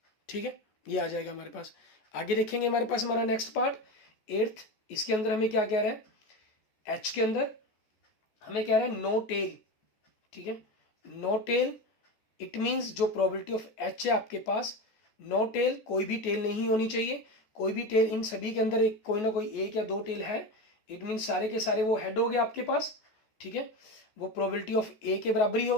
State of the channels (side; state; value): right; late; 14 ms